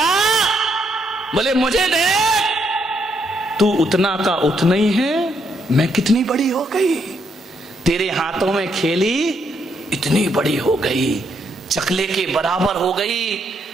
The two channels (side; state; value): both; normal; correlation 0.75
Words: बोले मुझे दे। तू उतना का उतना ही है, मैं कितनी बड़ी हो गई, तेरे हाथों में खेली इतनी बड़ी हो गई, चकले के बराबर हो गई।